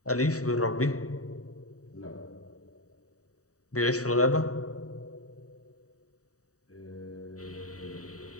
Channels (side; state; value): right; late; 0.66 ms